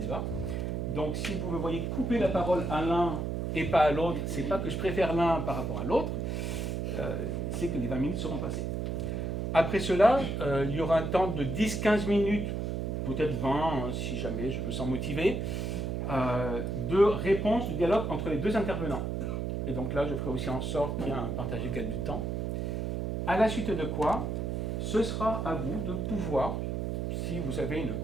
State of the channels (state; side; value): noise; right; hum, 2 dB below the sound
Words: Donc si vous me voyez couper la parole à l'un et pas à l'autre, c'est pas que je préfère l'un par rapport à l'autre, c'est que les 20 minutes seront passées. Après cela, il y aura un temps de 10-15 minutes, peut-être 20 si jamais je me sens motivé, de réponse, de dialogue entre les deux intervenants. Et donc là, je ferai aussi en sorte qu'il y ait un partage égal du temps. À la suite de quoi, ce sera à vous de pouvoir, si vous avez une